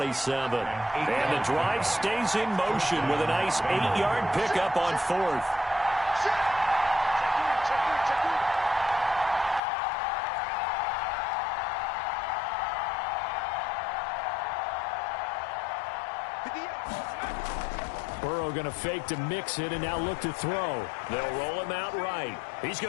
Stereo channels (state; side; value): drops out; right; at 9.6 s